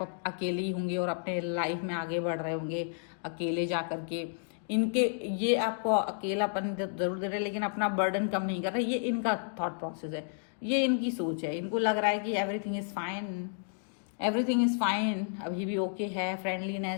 अकेले ही होंगे और अपने लाइफ में आगे बढ़ रहे होंगे अकेले जा करके। इनके ये आपको अकेलापन जरूर दे रहे हैं लेकिन अपना बर्डन कम नहीं कर रहे। ये इनका थॉट प्रोसेस है, ये इनकी सोच है। इनको लग रहा है कि everything is fine, everything is fine, अभी भी ओके है,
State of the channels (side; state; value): right; silent; digital silence